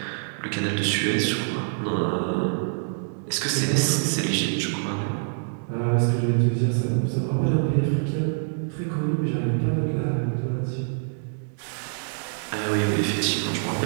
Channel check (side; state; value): left; silent; digital silence